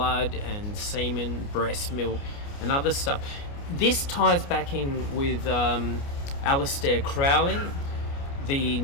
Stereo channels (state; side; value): late; right; 29 ms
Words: and semen, breast milk, and other stuff. This ties back in with Aleister Crowley, the